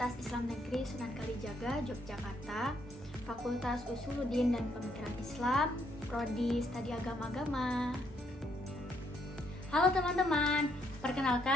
Islam Negeri Sunan Kalijaga, Yogyakarta, Fakultas Usuluddin dan Pemikiran Islam, Prodi Studi Agama-Agama. Halo teman-teman,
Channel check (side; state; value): both; normal; correlation 0.73